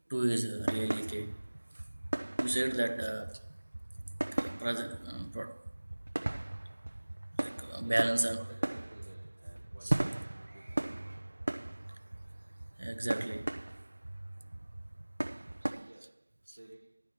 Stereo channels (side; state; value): both; inverted; correlation -1.00